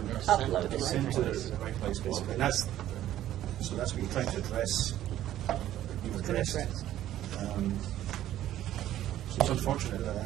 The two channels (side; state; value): left; quieter; 12.8 dB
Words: Uploaded. sent to the right place, basically. And that's what you're trying to address. So it's unfortunate